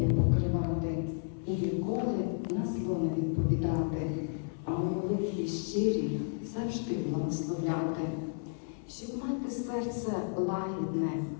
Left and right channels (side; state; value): right; silent; 56 dB below the other